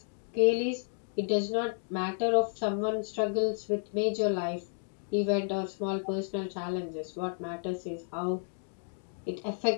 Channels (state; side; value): silent; right; digital silence